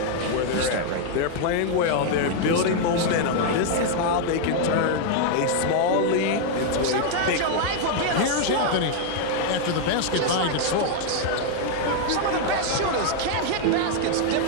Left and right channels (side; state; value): both; different; correlation 0.00